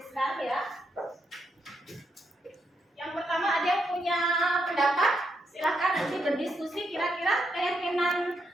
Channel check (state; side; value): normal; both; correlation 0.80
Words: ya. pendapat, silahkan nanti berdiskusi kira-kira keyakinan